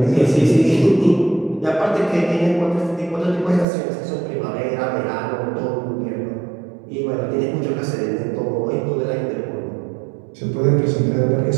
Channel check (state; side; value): drops out; left; at 3.7 s